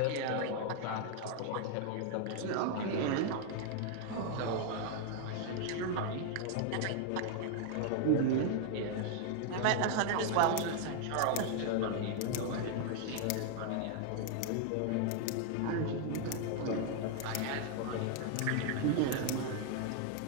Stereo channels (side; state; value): both; different; correlation 0.00